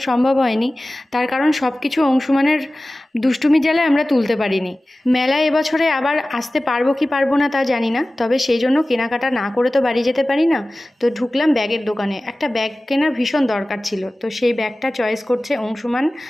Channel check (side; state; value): both; normal; correlation 0.97